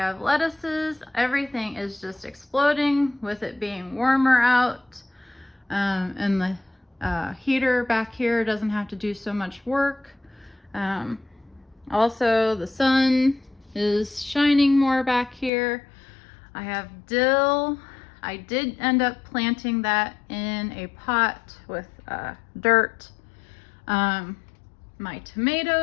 lettuces, everything is just exploding with it being warmer out. And the heater back here doesn't have to do so much work. Also the sun is shining more back here. I have dill. I did end up planting that in a pot with dirt. My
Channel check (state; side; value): drops out; right; at 15.5 s